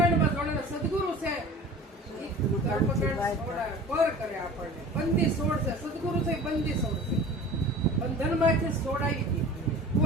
જોડે ને સદગુરુ છે કર્મકાંડ પર કરે આપણને. બંદી છોડ છે સદગુરુ છે બંદી છોડ છે. બંધનમાંથી છોડાવી દે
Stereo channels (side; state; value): both; normal; correlation 0.41